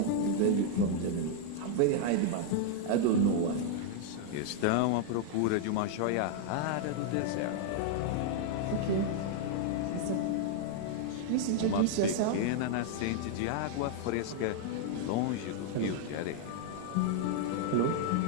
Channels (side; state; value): both; different; correlation 0.00